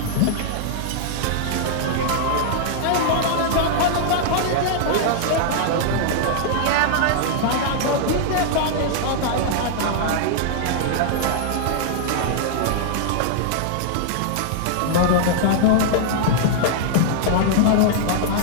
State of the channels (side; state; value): both; different; correlation -0.01